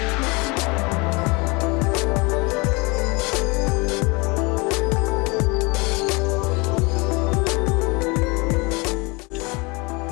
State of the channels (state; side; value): quieter; right; 27.3 dB